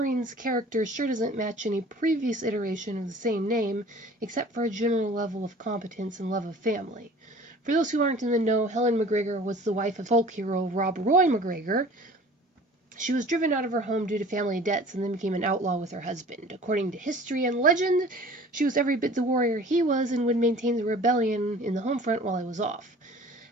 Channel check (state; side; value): normal; both; correlation 0.46